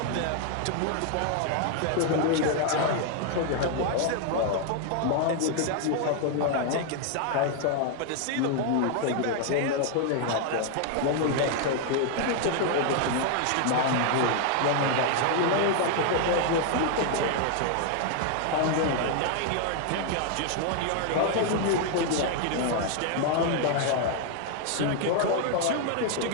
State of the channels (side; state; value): both; different; correlation 0.00